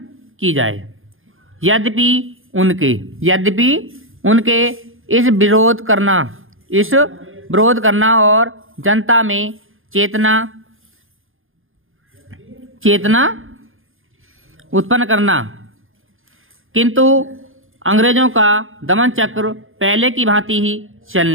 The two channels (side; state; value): left; late; 0.59 ms